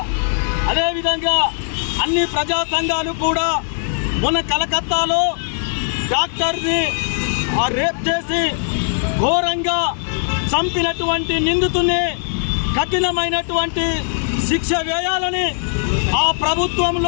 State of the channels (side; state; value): right; silent; 59 dB below the other